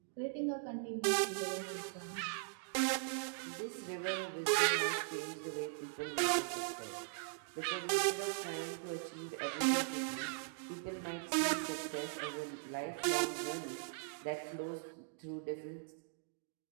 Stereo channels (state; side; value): silent; left; digital silence